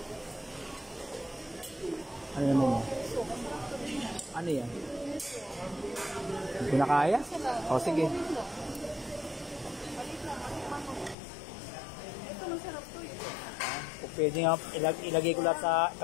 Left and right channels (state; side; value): drops out; right; at 11.2 s